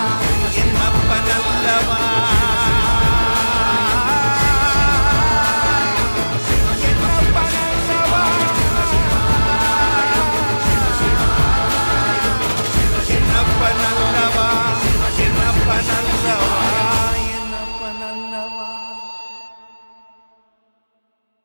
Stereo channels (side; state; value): both; inverted; correlation -1.00